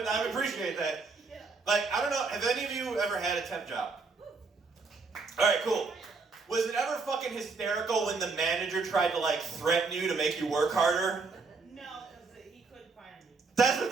I appreciate that. I don't know, have any of you ever had a temp job? Alright, cool. Was it ever fucking hysterical when the manager tried to, threaten you to make you work harder? No, because he couldn't fire me. That's the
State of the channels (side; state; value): left; quieter; 4.3 dB